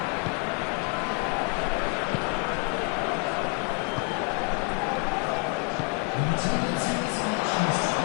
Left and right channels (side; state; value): right; quieter; 33.3 dB